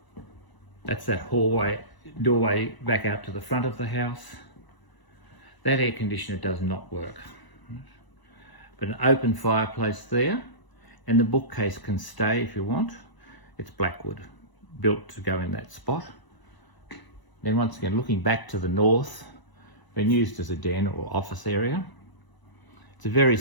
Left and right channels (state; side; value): late; right; 1.0 ms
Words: That's that hallway, doorway back out to the front of the house. That air conditioner does not work. But an open fireplace there, and the bookcase can stay if you want. It's blackwood, built to go in that spot. Then once again, looking back to the north, been used as a den or office area. It's a very